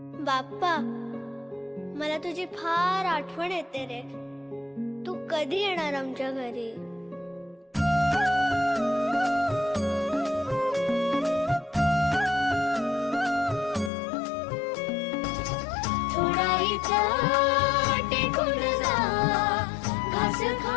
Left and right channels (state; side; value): drops out; right; at 13.9 s